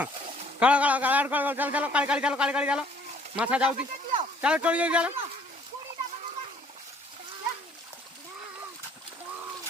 काळा काळा काळा काळा चल चलो काळी काळी चलो काळी काळी चलो माछा जाउती चलो चली जाऊ चलो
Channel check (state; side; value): normal; both; correlation 0.59